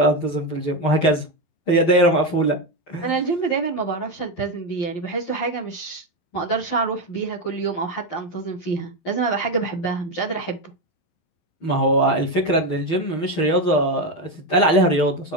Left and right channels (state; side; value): late; right; 12 ms